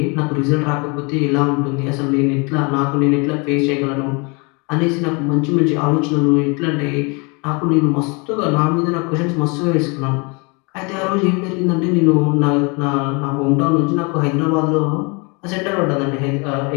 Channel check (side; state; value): right; quieter; 30.4 dB